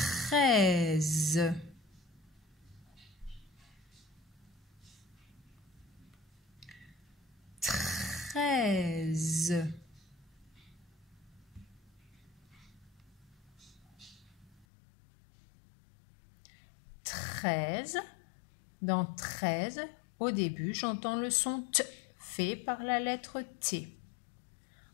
13. Dans 13, au début, j'entends le son T fait par la lettre T.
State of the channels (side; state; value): right; drops out; at 14.7 s